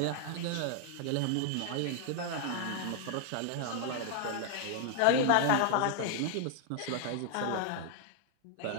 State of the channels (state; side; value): different; both; correlation 0.00